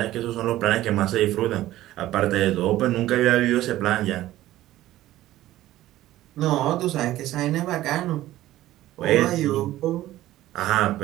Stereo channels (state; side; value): quieter; left; 15.0 dB